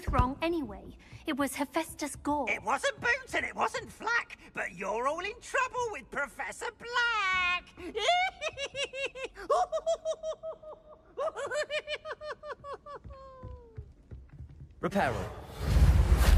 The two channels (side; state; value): both; identical; correlation 1.00